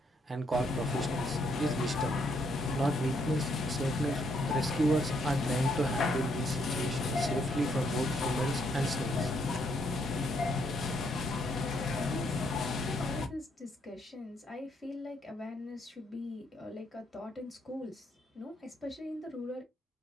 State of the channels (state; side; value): normal; both; correlation 0.73